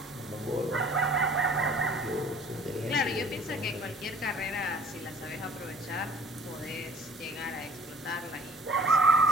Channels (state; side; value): normal; both; correlation 0.50